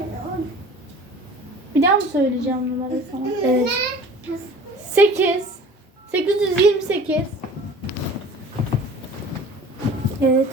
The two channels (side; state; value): both; normal; correlation 0.44